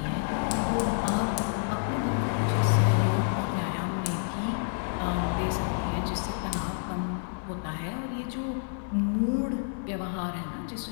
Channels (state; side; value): silent; right; digital silence